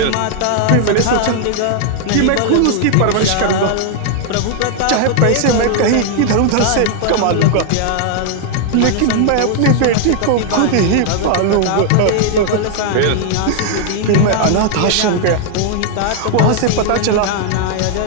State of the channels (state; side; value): different; both; correlation 0.00